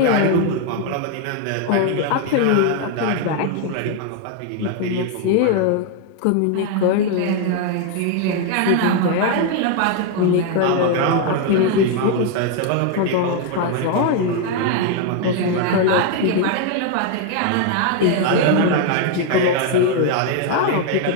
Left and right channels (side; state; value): both; different; correlation 0.01